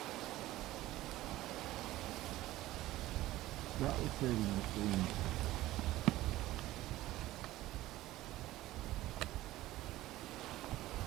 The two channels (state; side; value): quieter; left; 16.3 dB